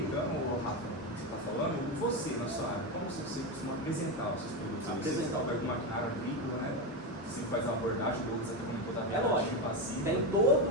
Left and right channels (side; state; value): both; normal; correlation 0.13